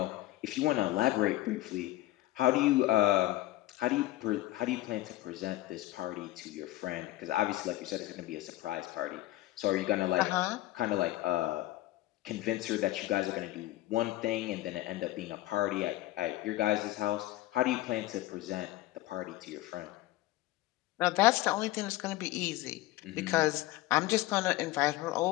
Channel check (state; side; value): quieter; right; 16.8 dB